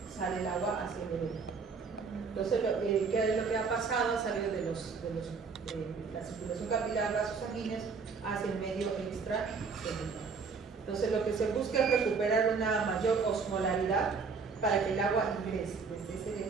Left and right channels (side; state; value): left; quieter; 5.1 dB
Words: sale el agua hacia el edema. Entonces, ¿qué es lo que ha pasado? Ha salido de la circulación capilar, vasos sanguíneos, hacia el medio extracelular. Entonces, lo que se busca es recuperar una mayor osmolaridad para que el agua ingrese desde ese